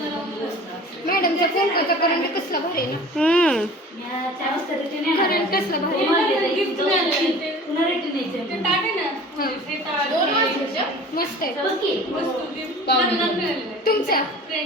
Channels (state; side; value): normal; both; correlation 0.42